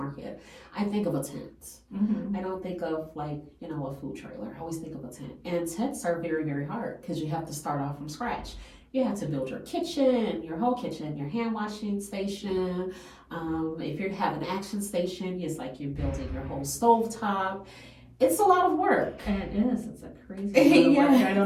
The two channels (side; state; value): both; identical; correlation 1.00